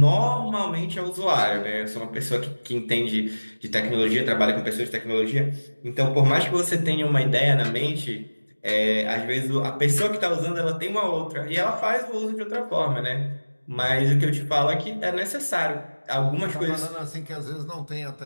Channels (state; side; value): inverted; both; correlation -1.00